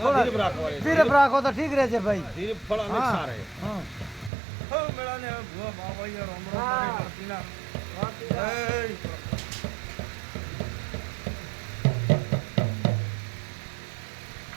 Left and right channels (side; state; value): left; drops out; at 4.3 s